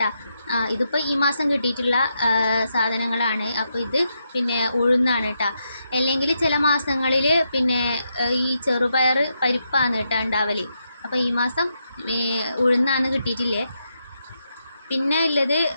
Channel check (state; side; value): inverted; both; correlation -0.82